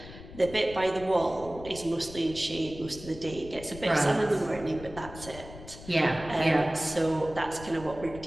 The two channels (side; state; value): left; noise; rumble, 15 dB below the sound